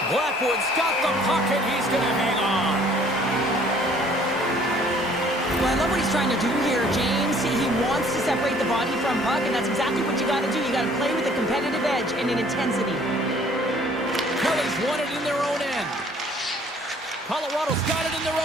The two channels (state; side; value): normal; both; correlation 0.57